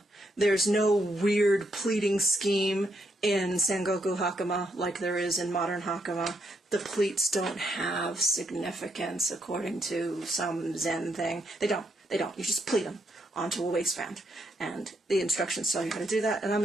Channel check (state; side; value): normal; both; correlation 0.77